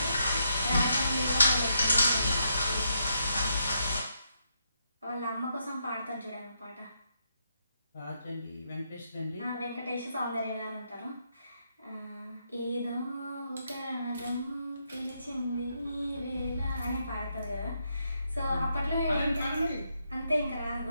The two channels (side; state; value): both; inverted; correlation -0.79